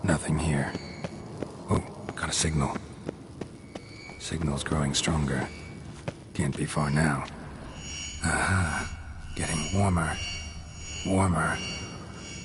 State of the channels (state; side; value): identical; both; correlation 1.00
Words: Nothing here. Oh, got a signal. Signal's growing stronger. Can't be far now. Aha. Getting warmer. Warmer.